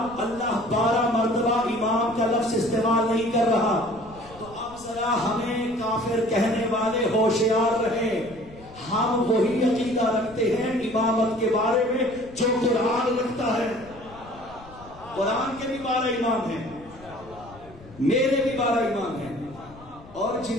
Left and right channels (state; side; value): noise; left; rumble, 21 dB below the sound